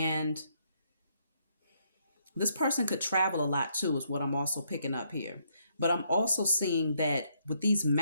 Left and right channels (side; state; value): both; inverted; correlation -0.73